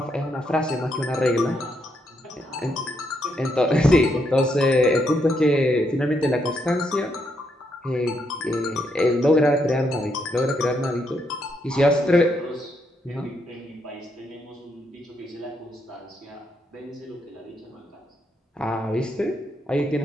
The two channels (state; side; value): normal; both; correlation 0.77